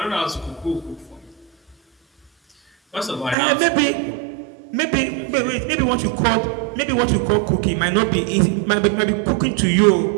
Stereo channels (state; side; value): drops out; left; at 3.4 s